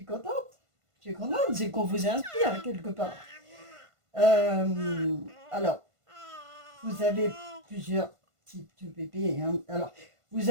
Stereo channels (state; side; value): late; left; 1.5 ms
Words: contente. Je suis contente. C'est qu'on vous inspire quelque part. Alors, vous avez plusieurs types de bébés. Hein. Alors, vous